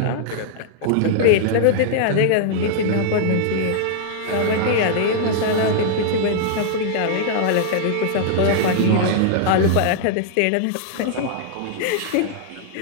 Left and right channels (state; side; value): different; both; correlation -0.01